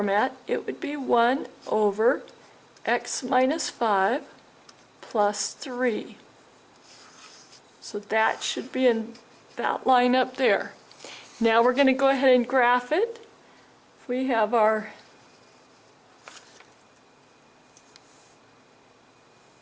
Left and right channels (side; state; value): both; identical; correlation 1.00